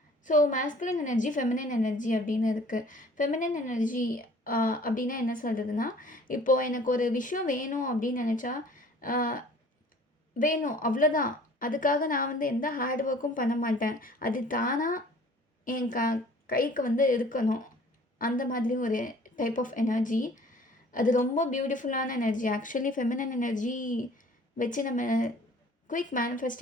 so masculine energy, feminine energy அப்படின்னு இருக்குது. ஃபெமினன் எனர்ஜி அப்படின்னா என்ன சொல்கிறதுனா, இப்போது எனக்கு ஒரு விஷயம் வேணும் அப்படின்னு நினச்சா வேணும், அவ்வளோதான். அதுக்காக நான் வந்து எந்த ஹார்ட் ஒர்க்கும் பண்ண மாட்டேன். அது தானாக என் கைக்கு வந்து இருக்கணும். அந்த மாதிரி ஒரு டைப் ஆஃப் எனர்ஜி. அது ரொம்ப பியூட்டிஃபுல்லான எனர்ஜி. ஆக்சுவலி ஃபெமினன் எனர்ஜி வச்சு நம்ம குயிக்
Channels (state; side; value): normal; both; correlation 0.51